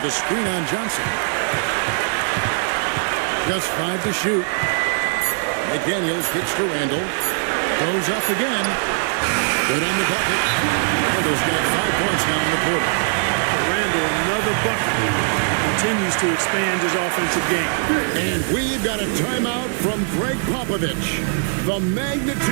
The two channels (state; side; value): silent; left; 65 dB below the other